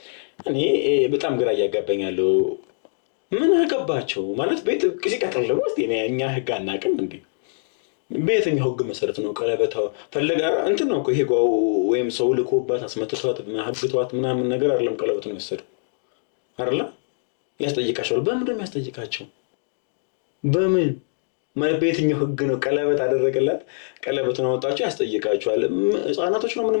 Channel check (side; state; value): right; silent; digital silence